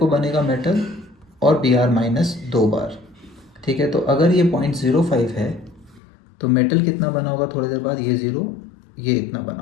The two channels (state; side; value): drops out; right; at 6.0 s